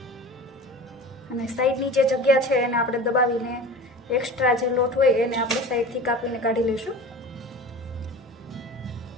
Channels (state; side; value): normal; both; correlation 0.36